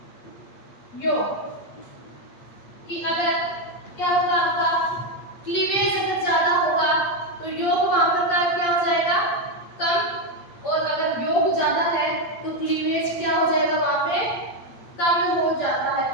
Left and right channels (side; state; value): right; late; 8.4 ms